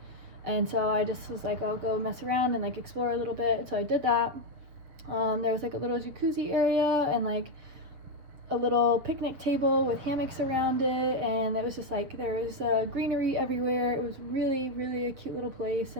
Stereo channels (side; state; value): left; late; 7.5 ms